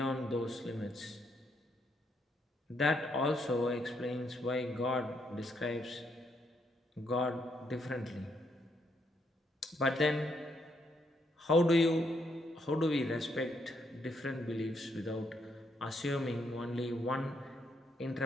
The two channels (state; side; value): normal; both; correlation 0.76